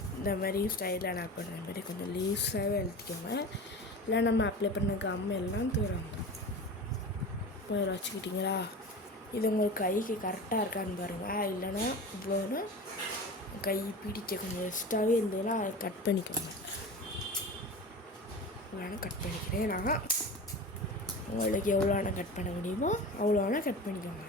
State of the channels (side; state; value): both; normal; correlation 0.32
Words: இந்த மாதிரி ஸ்டைலாக நான் பண்ணுற மாதிரி கொஞ்சம் லீஸாகவே எழுதிக்கோங்க. இல்லை நம்ம அப்ளை பண்ண கம் எல்லாம் தூரம் போய் வச்சுக்கிட்டிங்களா? இது உங்களுக்கு கைக்கு கரெக்டாக இருக்கான்னு பாருங்கள். இல்லைன்னா இவ்வளோனா கை பிடிக்க கொஞ்சம் எக்ஸ்ட்ராவே இருந்ததுன்னா அதை கட் பண்ணிக்கோங்க. இவ்வளோனா கட் பண்ணிக்கிறேன் நான். உங்களுக்கு எவ்வளோனா கட் பண்ண முடியுமோ அவ்வளோனா கட் பண்ணிக்கோங்க.